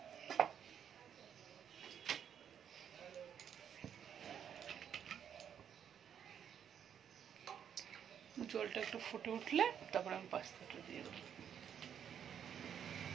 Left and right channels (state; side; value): quieter; left; 8.6 dB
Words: জলটা একটু ফুটে উঠলে তারপর আমি পাস্তাটা দিয়ে দেবো।